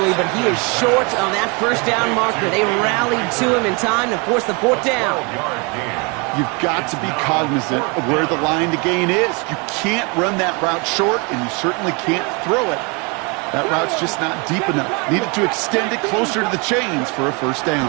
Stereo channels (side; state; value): left; quieter; 31.0 dB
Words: but he is short of that first down marker. They rallied to him in time to force the fourth down. You've got to be cognizant of where the line to gain is. You can't run that route short, and you certainly can't throw it. That route's just not deep enough. Needed to extend it closer to the chains for a first